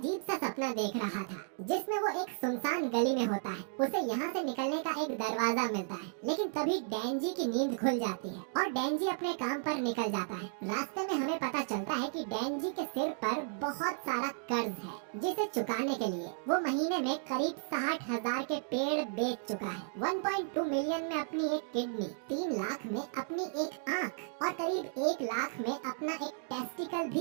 सा सपना देख रहा था, जिसमें वो एक सुनसान गली में होता है। उसे यहाँ से निकलने का एक दरवाजा मिलता है, लेकिन तभी डेंजी की नींद खुल जाती है और डेंजी अपने काम पर निकल जाता है। रास्ते में हमें पता चलता है कि डेंजी के सिर पर बहुत सारा कर्ज है, जिसे चुकाने के लिए वो महीने में करीब 60,000 के पेड़ बेच चुका है। 1.2 मिलियन में अपनी एक किडनी, 3 लाख में अपनी एक आँख और करीब 1 लाख में अपना एक टेस्टिकल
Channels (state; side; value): silent; left; digital silence